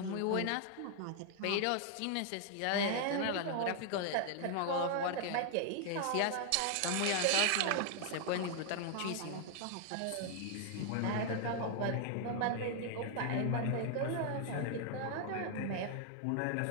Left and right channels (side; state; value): both; different; correlation 0.00